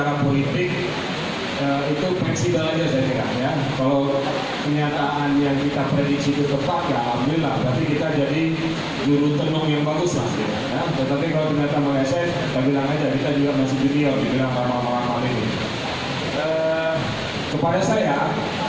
politik itu fleksibel aja saya kira ya. Kalau kenyataan yang kita prediksi itu tepat ya alhamdulillah, berarti kita jadi juru tenung yang bagus lah ya. Tetapi kalau ternyata meleset, kita bilang aja kita juga masih junior, dibilang lama-lama ini. Kepada saya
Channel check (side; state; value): both; identical; correlation 1.00